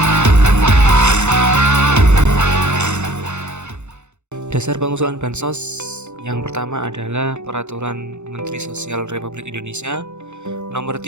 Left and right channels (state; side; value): late; left; 0.83 ms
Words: Dasar pengusulan bansos yang pertama adalah Peraturan Menteri Sosial Republik Indonesia Nomor